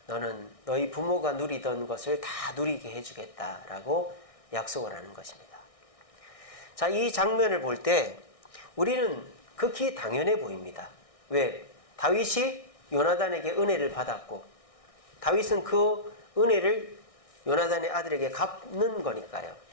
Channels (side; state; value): right; late; 1.6 ms